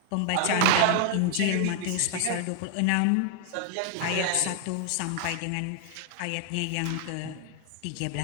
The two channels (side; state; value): both; different; correlation 0.00